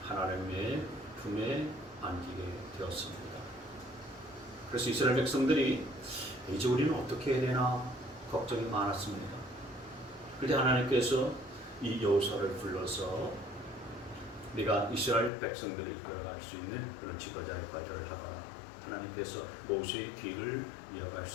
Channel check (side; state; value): right; drops out; at 15.3 s